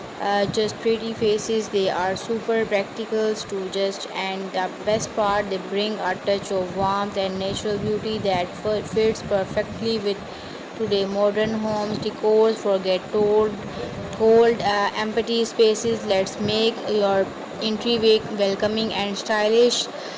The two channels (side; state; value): both; identical; correlation 1.00